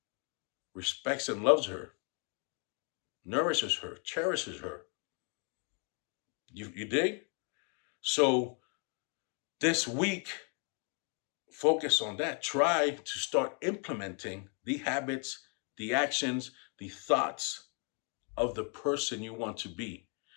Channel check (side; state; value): right; quieter; 38.6 dB